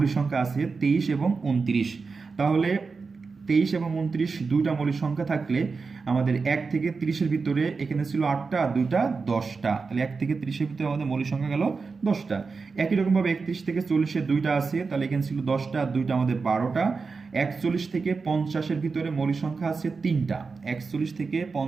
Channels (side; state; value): left; quieter; 4.6 dB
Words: সংখ্যা আছে, 23 এবং 29। তাহলে 23 এবং 29 2টা মৌলিক সংখ্যা থাকলে আমাদের 1 থেকে 30-এর ভিতরে এখানে ছিল 8টা আর 2টা 10টা। তাহলে 1 থেকে 30-এর ভিতরে আমাদের মৌলিক সংখ্যা গেল 10টা। একই রকমভাবে 31 থেকে 40-এর 2টা আছে, তাহলে এখানে ছিল 10টা আর 2টা আমাদের 12টা। 41 থেকে 50-এর ভিতরে মৌলিক সংখ্যা আছে 3টা। 41 থেকে